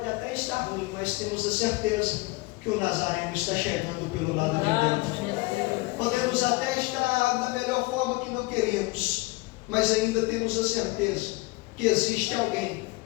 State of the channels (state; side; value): quieter; right; 23.5 dB